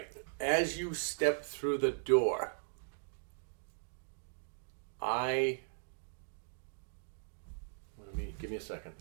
As you step through the door, give me a second.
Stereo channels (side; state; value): left; silent; digital silence